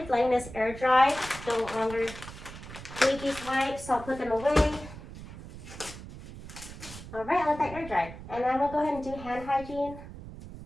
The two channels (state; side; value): noise; right; rumble, 13 dB below the sound